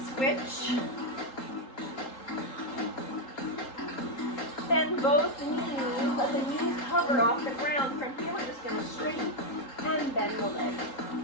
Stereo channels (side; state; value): right; late; 3.8 ms